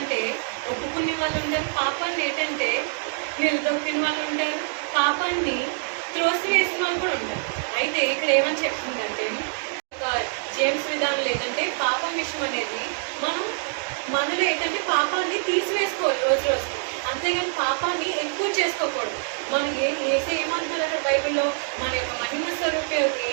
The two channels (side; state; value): left; silent; 62 dB below the other